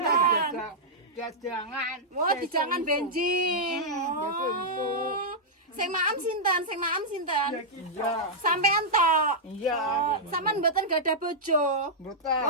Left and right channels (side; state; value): both; normal; correlation -0.09